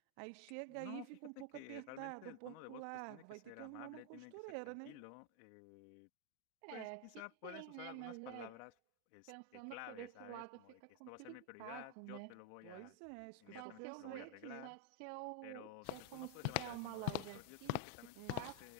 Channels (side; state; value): both; different; correlation 0.00